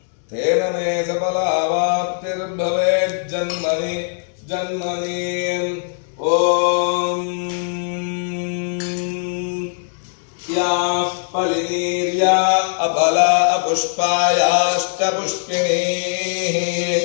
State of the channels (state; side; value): silent; right; 66 dB below the other